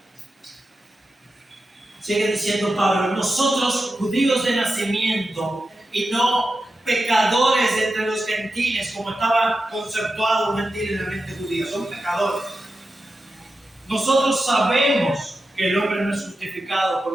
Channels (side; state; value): both; normal; correlation 0.91